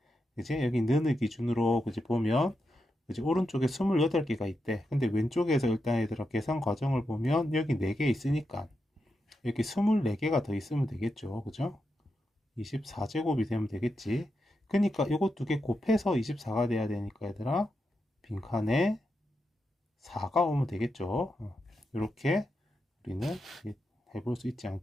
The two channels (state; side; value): normal; both; correlation 0.86